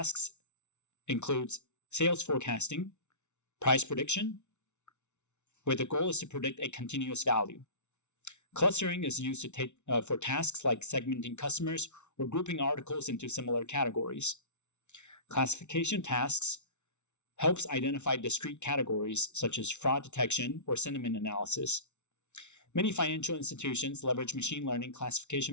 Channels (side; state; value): right; late; 0.82 ms